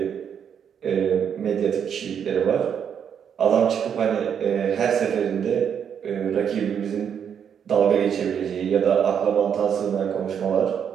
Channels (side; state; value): left; quieter; 8.0 dB